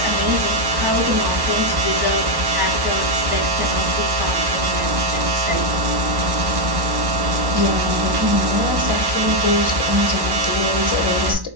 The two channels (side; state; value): left; late; 1.1 ms